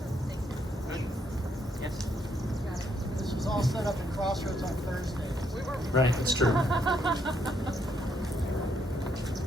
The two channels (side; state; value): both; normal; correlation 0.74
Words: Thank you. Yes. This was all set up in Crossroads on Thursday. Right, that's true.